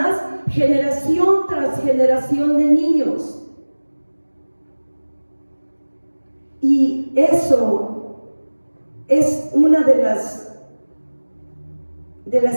generación tras generación de niños. Y eso es una de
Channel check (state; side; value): inverted; both; correlation -1.00